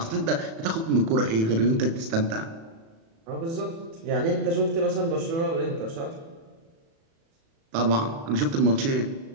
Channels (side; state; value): left; late; 36 ms